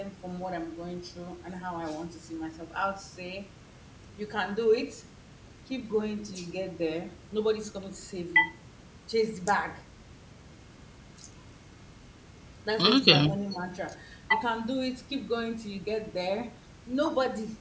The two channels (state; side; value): identical; both; correlation 1.00